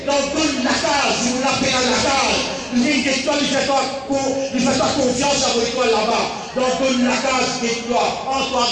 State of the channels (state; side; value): identical; both; correlation 1.00